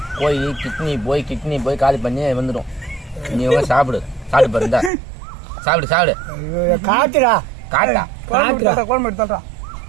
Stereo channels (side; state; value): left; drops out; at 4.9 s